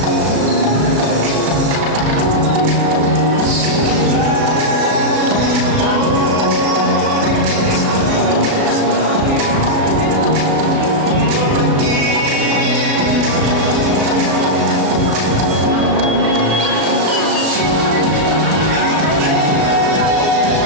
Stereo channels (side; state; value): left; late; 37 ms